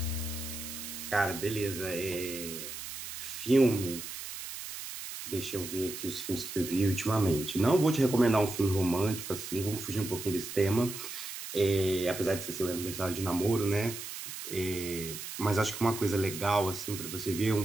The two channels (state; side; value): noise; right; hiss, 9 dB below the sound